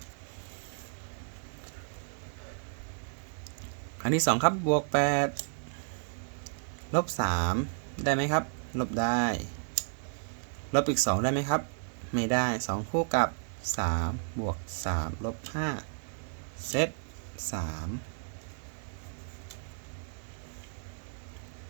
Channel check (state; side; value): silent; left; digital silence